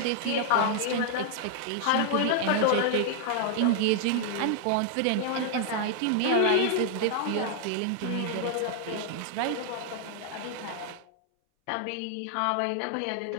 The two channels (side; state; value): both; different; correlation 0.00